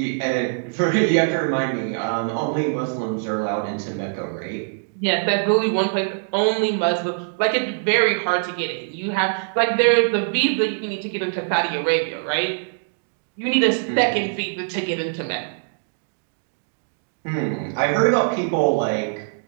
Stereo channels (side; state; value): left; silent; digital silence